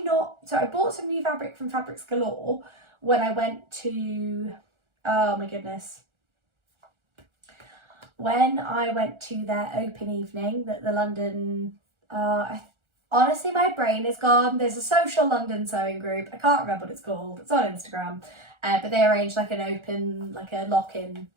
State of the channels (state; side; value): late; left; 1.4 ms